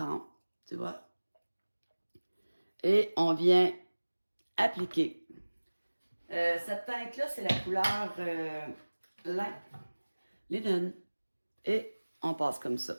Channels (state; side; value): inverted; both; correlation -1.00